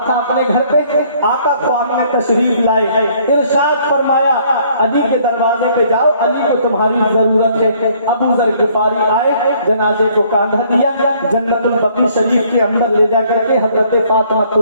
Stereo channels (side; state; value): both; inverted; correlation -0.62